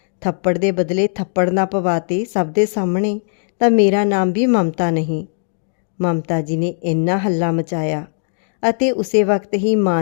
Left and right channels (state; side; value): silent; right; digital silence